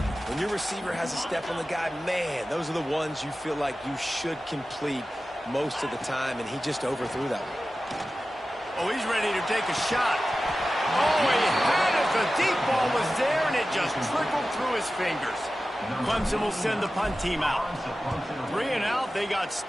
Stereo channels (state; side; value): normal; both; correlation 0.95